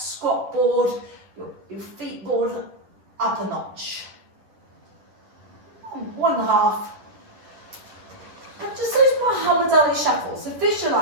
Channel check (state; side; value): late; left; 10 ms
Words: board, your feet board up a notch. 1.5. And just those Muhammad Ali shuffles. So